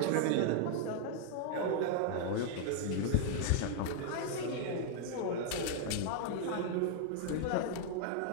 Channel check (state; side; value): different; both; correlation 0.00